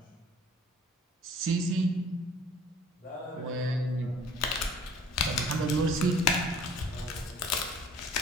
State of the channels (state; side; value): normal; both; correlation 0.51